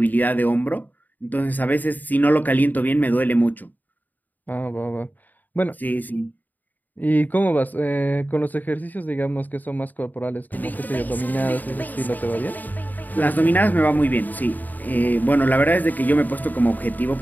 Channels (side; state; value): right; late; 0.085 ms